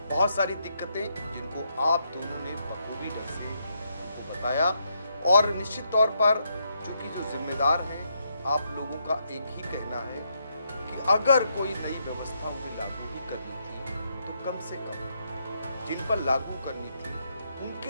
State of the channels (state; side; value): inverted; both; correlation -0.78